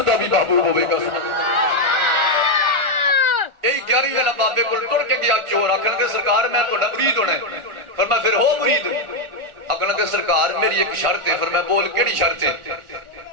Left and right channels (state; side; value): late; left; 1.4 ms